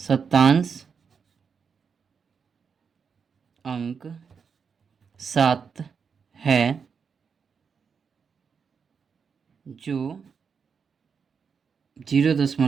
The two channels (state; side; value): quieter; left; 6.1 dB